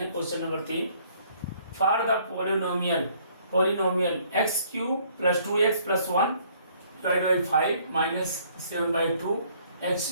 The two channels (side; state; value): both; inverted; correlation -0.62